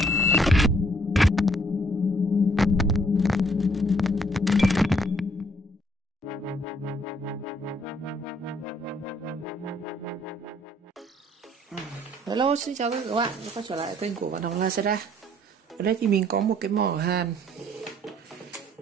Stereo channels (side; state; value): both; normal; correlation 0.64